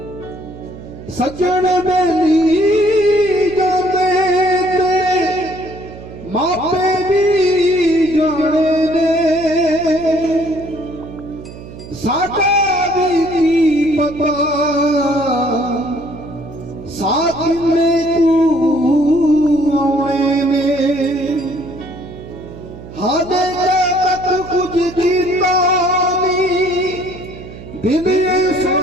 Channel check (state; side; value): noise; right; hum, 15 dB below the sound